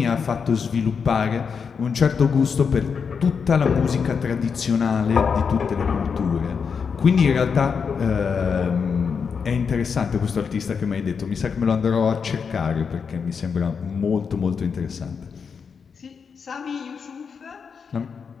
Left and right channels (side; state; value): right; quieter; 6.1 dB